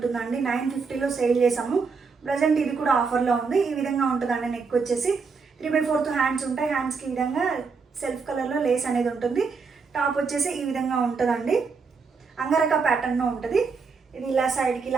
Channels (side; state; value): left; quieter; 5.0 dB